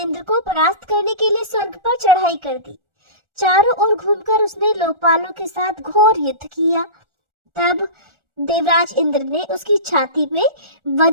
को परास्त करने के लिए स्वर्ग पर चढ़ाई कर दी। चारों ओर घूमकर उसने लोकपालों के साथ घोर युद्ध किया। तब देवराज इंद्र ने उसकी छाती में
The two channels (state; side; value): late; left; 1.4 ms